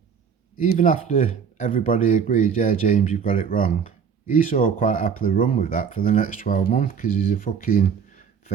Even after everybody agreed, yeah, James, you've got it wrong. Esau quite happily run with that for the next 12 months because he's a fucking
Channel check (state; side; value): quieter; left; 6.9 dB